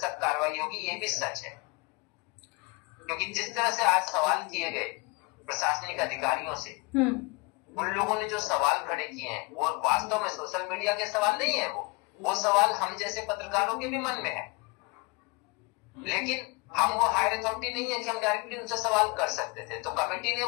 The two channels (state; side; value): quieter; right; 28.0 dB